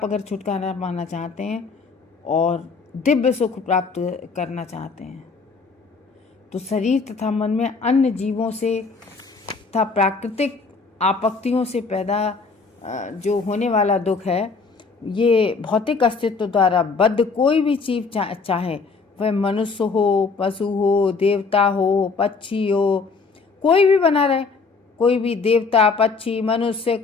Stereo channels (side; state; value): right; quieter; 4.6 dB